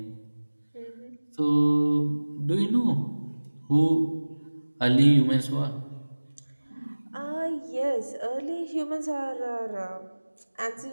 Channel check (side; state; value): both; inverted; correlation -1.00